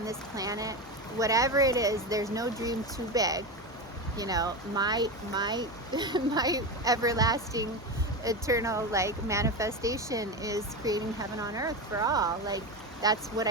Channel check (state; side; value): normal; both; correlation 0.19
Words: this planet. Whatever it is, there's no dream too big. You know, my my everlasting eternal like manifestation is creating heaven on earth for all. Like, that's what